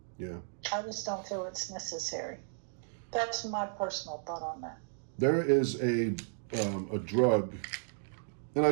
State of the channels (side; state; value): left; silent; digital silence